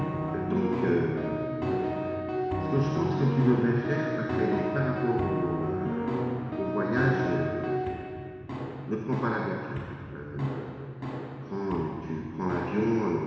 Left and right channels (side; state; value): both; identical; correlation 1.00